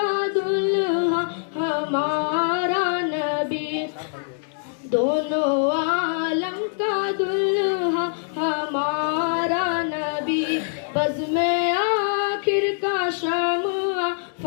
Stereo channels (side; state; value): right; silent; digital silence